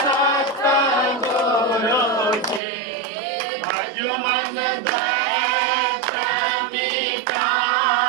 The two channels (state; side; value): drops out; left; at 2.6 s